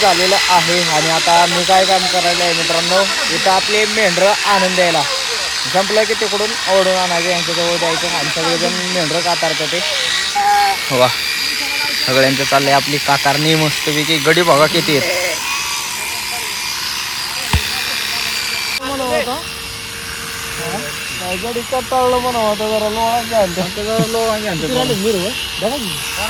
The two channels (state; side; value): identical; both; correlation 1.00